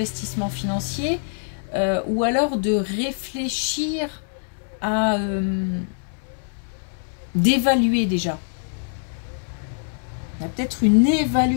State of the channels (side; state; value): right; silent; 63 dB below the other